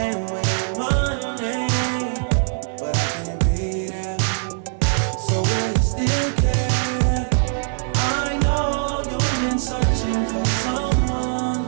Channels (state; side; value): silent; left; digital silence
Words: with money, but I can't be there. So will you still care? I know you've been searching for someone